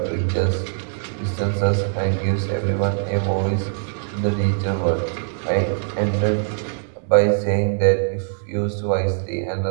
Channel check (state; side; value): silent; left; 64 dB below the other